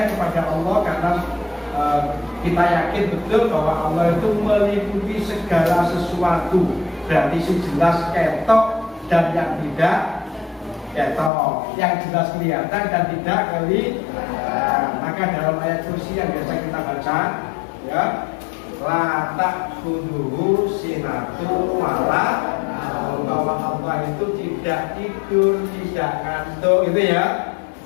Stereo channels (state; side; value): drops out; right; at 11.3 s